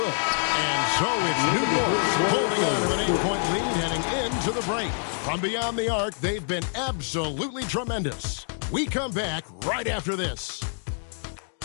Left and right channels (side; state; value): right; silent; digital silence